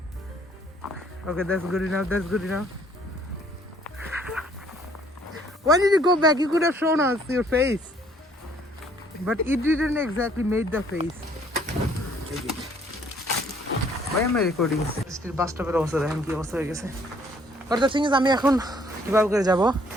Okay, that's good enough. That's good enough. Why did you go back? You could have shown us your face. But it didn't exactly make the face. Why am I recording? Still bus stop এর অবস্থা দেখেন কি অবস্থা হয়ে গেছে। But the thing is, আমি এখন কিভাবে করে যাব?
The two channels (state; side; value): normal; both; correlation 0.62